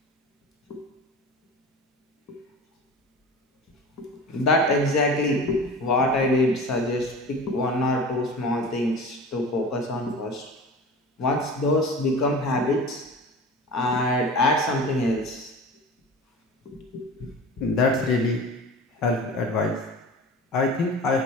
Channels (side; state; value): both; normal; correlation 0.36